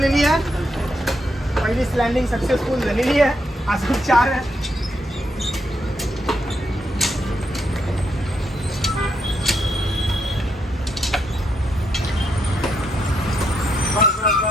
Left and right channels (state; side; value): normal; both; correlation 0.79